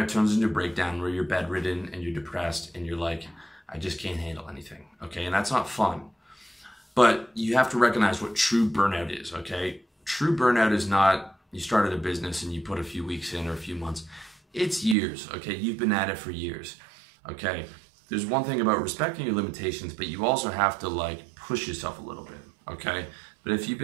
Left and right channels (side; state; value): left; drops out; at 15.0 s